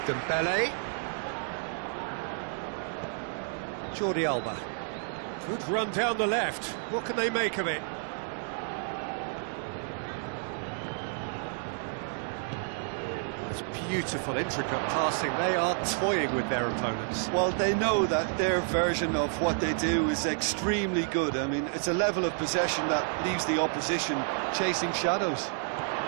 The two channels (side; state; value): left; silent; 58 dB below the other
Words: Dembele. Jordi Alba. Good run down the left. What can they make of it? It's beautiful, intricate passing. They are toying with their opponents. Well, they know that their version of what they do is extremely good. I mean, it's a level of possession that leaves the opposition chasing shadows.